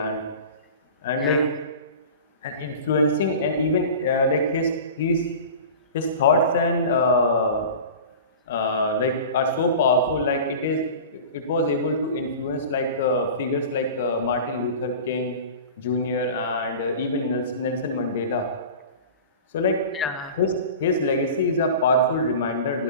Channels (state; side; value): inverted; both; correlation -0.36